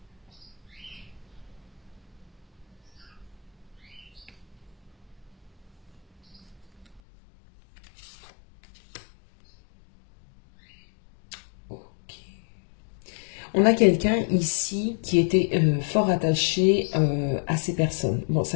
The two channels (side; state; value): right; drops out; at 7.0 s